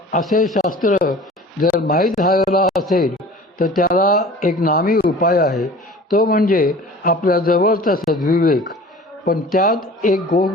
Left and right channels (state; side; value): normal; both; correlation 0.43